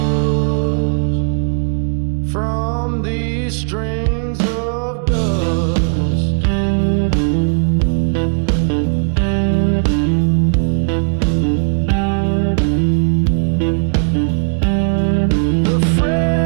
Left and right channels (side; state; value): left; silent; 69 dB below the other